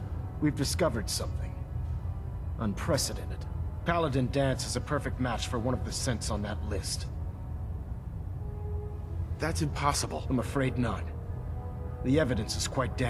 we've discovered something unprecedented. Paladin Danse is a perfect match for one of the synths on that list. That's impossible. I'm afraid not. The evidence is quite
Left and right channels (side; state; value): both; identical; correlation 1.00